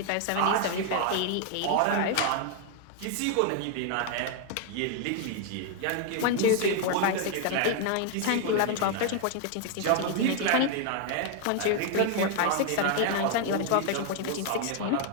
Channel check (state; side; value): different; both; correlation 0.00